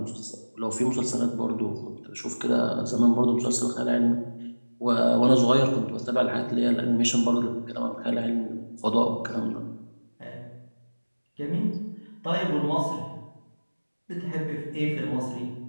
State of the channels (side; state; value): both; inverted; correlation -1.00